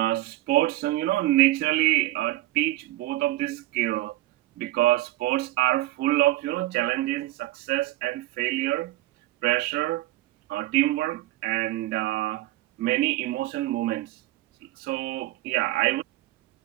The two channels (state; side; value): quieter; left; 16.6 dB